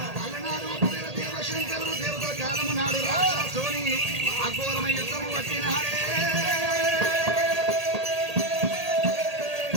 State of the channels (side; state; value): left; late; 1.8 ms